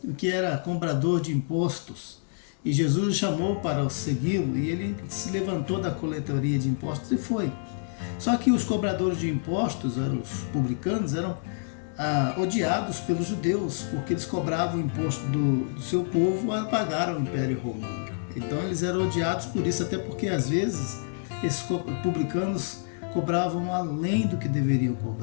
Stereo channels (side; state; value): right; silent; digital silence